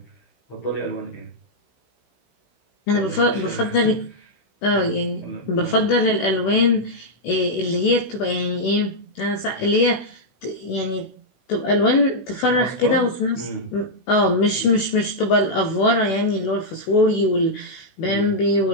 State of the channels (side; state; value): right; late; 16 ms